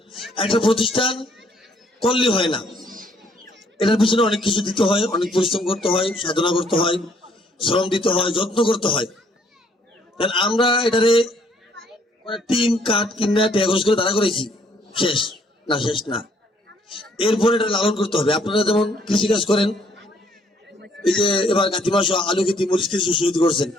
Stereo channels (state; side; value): normal; both; correlation 0.65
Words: একটা প্রতিষ্ঠান করলে হয় না, এটার পিছনে অনেক কিছু দিতে হয়, অনেক পরিশ্রম করতে হয়, সাধনা করতে হয়, শ্রম দিতে হয়, যত্ন করতে হয়। কারণ আমরা এটারে টিন কাঠ কিনা ট্যাগস করে দাঁড়া করেছি, শেষ না, শেষ না। এরপরে এটা লালন করতে হবে। আপনারা যেমন কৃষিকাজ করেন, এই যে এবার কাতি মাস আলু খেতি, মরিচ খেতি শহীদ করছেন,